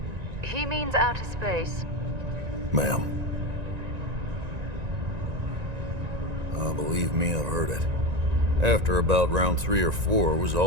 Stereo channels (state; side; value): late; left; 1.9 ms